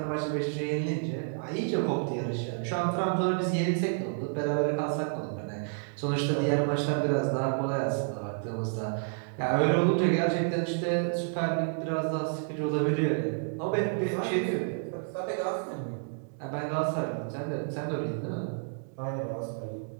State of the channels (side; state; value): left; silent; digital silence